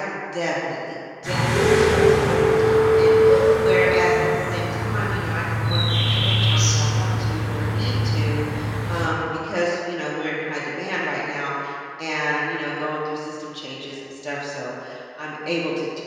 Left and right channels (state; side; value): identical; both; correlation 1.00